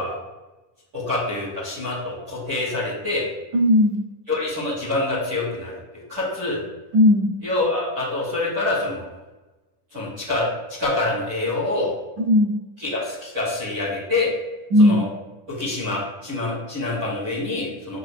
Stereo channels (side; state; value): left; late; 10 ms